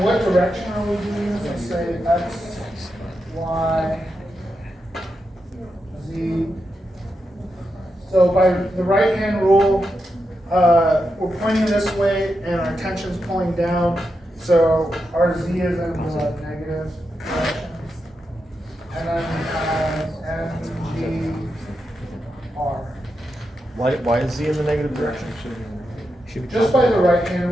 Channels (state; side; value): normal; both; correlation 0.86